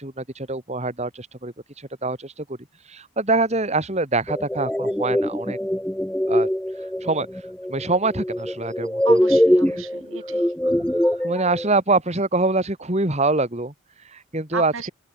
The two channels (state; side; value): normal; both; correlation 0.52